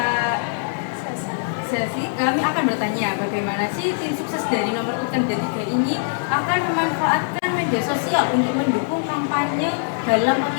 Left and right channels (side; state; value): right; silent; 62 dB below the other